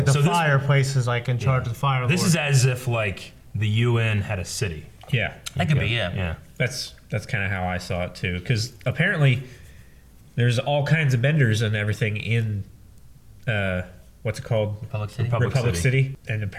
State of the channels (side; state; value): both; identical; correlation 1.00